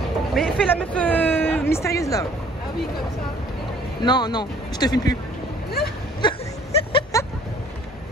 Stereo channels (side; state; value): both; normal; correlation 0.56